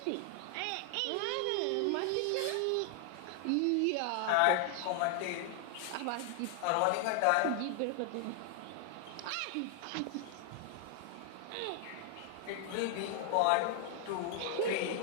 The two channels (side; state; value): both; different; correlation 0.00